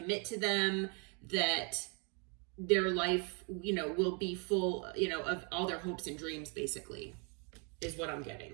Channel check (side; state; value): left; quieter; 35.8 dB